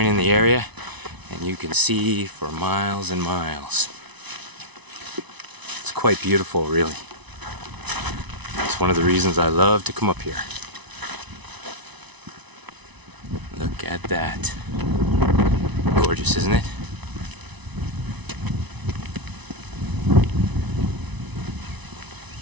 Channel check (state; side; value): late; left; 1.0 ms